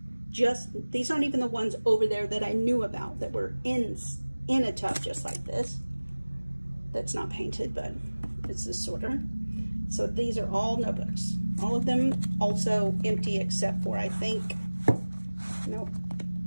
These aren't even the ones over there that I knew about that were in a tub just like this. That's not painted, but it's a sorter. So these are all notebooks. All of them also empty except for, I think, nope.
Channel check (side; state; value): both; inverted; correlation -1.00